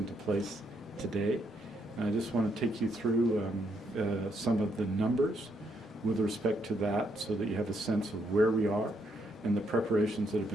place today. And I just want to take you through some of the numbers with respect to that so that you have a sense of where we are and the preparations that have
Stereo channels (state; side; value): normal; both; correlation 0.75